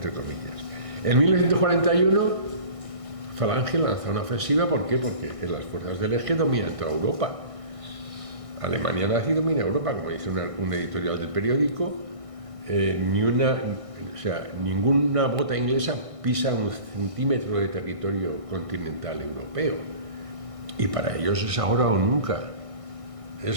comillas. En 1941, Falange lanza una ofensiva. ¿Por qué? Porque las fuerzas del Eje dominan toda Europa. Alemania nazi domina Europa, como dice un editorial del periódico. Ninguna bota inglesa pisa un centímetro de territorio continental europeo. Y para ellos es ahora o nunca.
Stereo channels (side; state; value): left; late; 1.6 ms